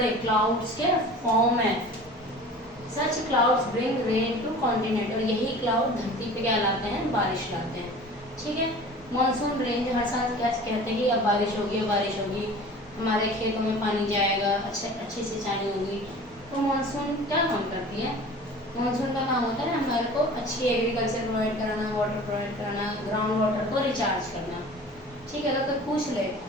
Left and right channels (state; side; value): normal; both; correlation 0.41